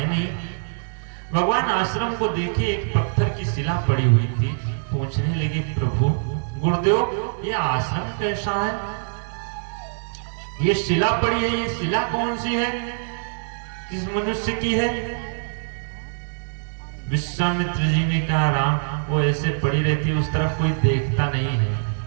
नहीं। भगवान आश्रम को देखे, एक पत्थर की शिला पड़ी हुई थी। पूछने लगे, प्रभु गुरुदेव ये आश्रम कैसा है? ये शिला पड़ी है, ये शिला कौन सी है? किस मनुष्य की है? विश्वामित्र जी ने कहा, राम वो ऐसे पड़ी रहती है, उस तरफ कोई देखता नहीं है,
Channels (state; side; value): silent; left; digital silence